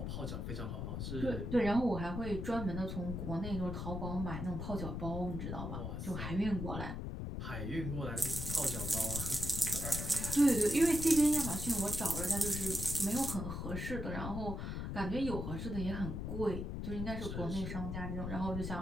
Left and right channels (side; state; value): left; noise; rumble, 4 dB below the sound